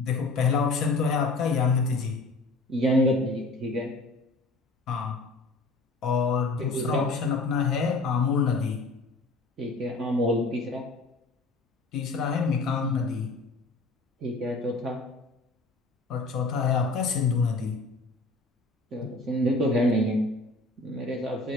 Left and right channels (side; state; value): right; quieter; 3.1 dB